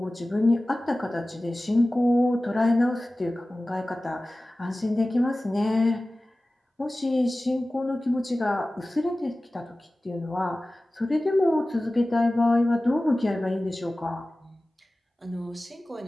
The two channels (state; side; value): normal; both; correlation 0.97